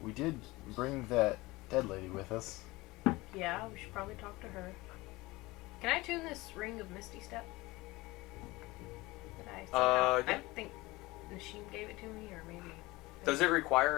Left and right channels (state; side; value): quieter; right; 21.1 dB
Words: we did bring that dead lady with us. Yeah, we should probably talk to her. Can I tune this ring of Misty Step? Did I see that? Yeah. I think Nashim gave it to me, or maybe. Does it